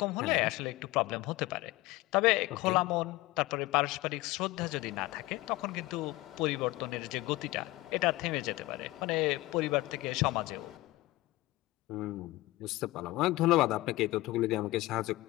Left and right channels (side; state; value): right; quieter; 19.3 dB